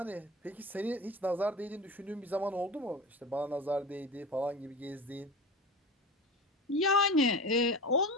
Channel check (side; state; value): both; normal; correlation 0.32